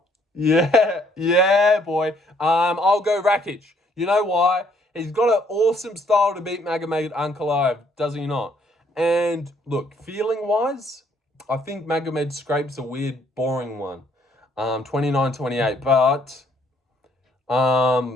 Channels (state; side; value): normal; both; correlation 0.66